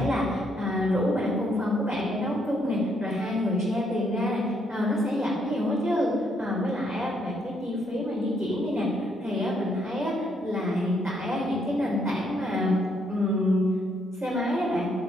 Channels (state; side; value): normal; both; correlation 0.73